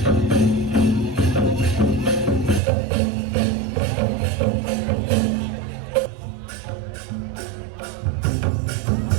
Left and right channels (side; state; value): left; drops out; at 2.6 s